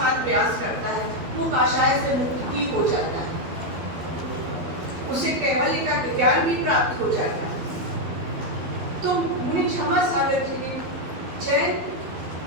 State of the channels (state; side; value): late; left; 12 ms